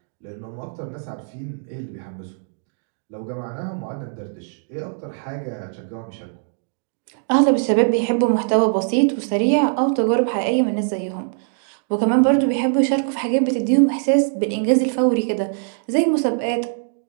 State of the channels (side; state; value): left; silent; digital silence